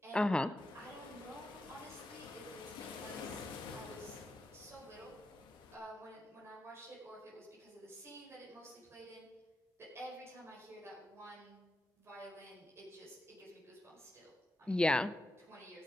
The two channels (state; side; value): normal; both; correlation 0.86